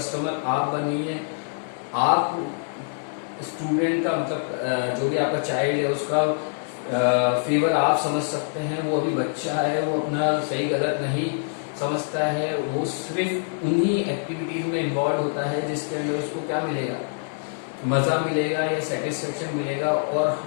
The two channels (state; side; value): silent; right; 62 dB below the other